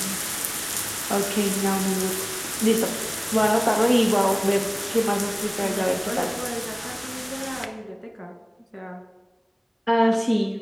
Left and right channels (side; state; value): both; identical; correlation 1.00